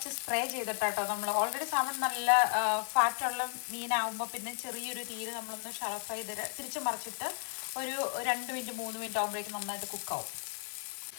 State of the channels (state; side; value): silent; right; digital silence